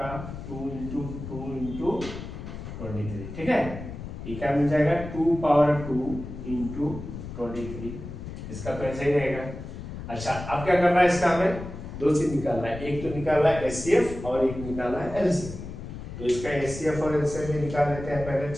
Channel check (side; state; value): left; noise; rumble, 10 dB below the sound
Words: 2 इंटू 2 इंटू 23। ठीक है, ये क्या मिल जाएगा, 2 पावर 2 इंटू 23। इसका तो ऐसा ही रहेगा। अच्छा अब क्या करना है, इसका हमें 2 चीज निकालना है, एक तो निकालना है एचसीएफ और एक निकालना है एलसीएफ। तो इसका एचसीएफ और एलसीएफ भी निकाल लेते हैं पहले।